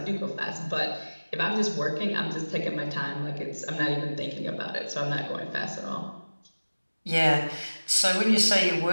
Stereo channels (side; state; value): both; inverted; correlation -1.00